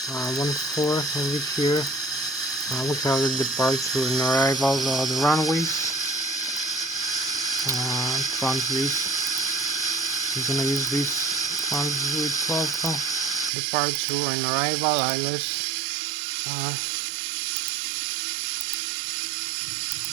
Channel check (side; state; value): left; drops out; at 13.5 s